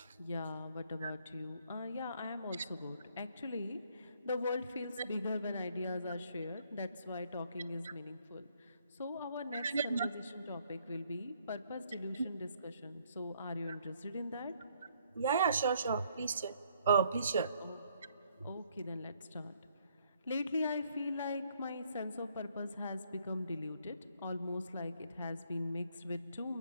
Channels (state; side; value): inverted; both; correlation -0.68